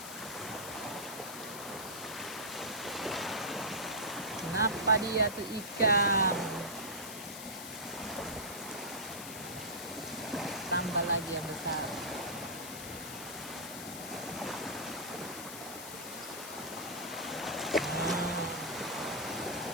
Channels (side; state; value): left; noise; hiss, 10 dB below the sound